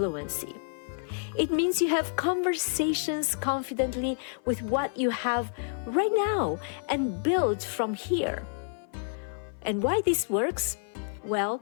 It means you have conversations confidently with what you have right now and build from here. And why this works? Well,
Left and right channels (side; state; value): right; silent; 55 dB below the other